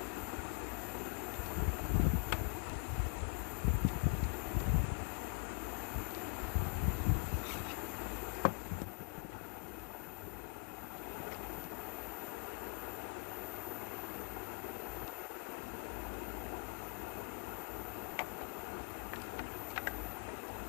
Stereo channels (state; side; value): silent; right; digital silence